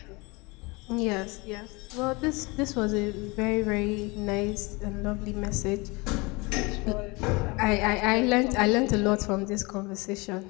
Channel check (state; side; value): quieter; right; 26.1 dB